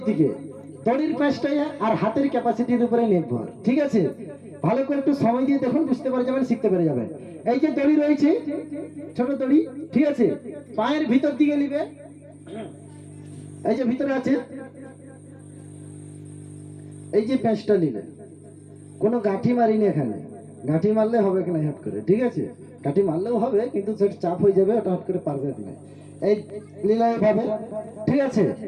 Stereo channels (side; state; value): both; identical; correlation 1.00